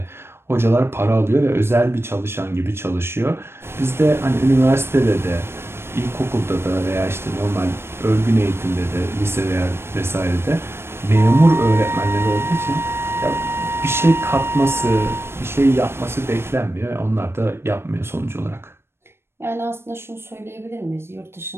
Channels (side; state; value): left; late; 0.12 ms